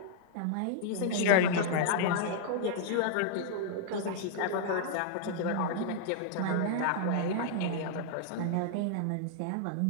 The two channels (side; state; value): both; different; correlation -0.01